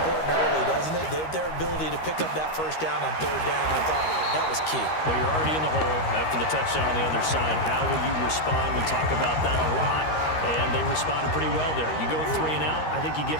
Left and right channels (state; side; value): late; right; 13 ms